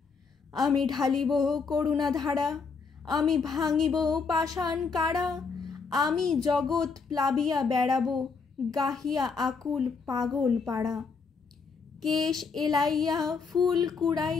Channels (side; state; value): right; quieter; 5.1 dB